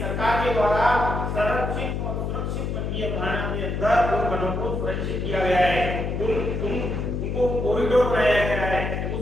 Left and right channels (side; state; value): left; noise; hum, 2 dB below the sound